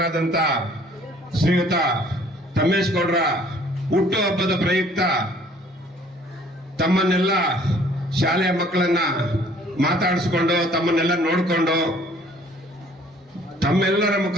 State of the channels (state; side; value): normal; both; correlation 0.57